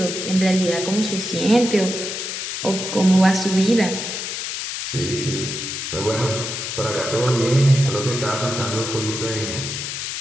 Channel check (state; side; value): noise; left; hiss, 5 dB below the sound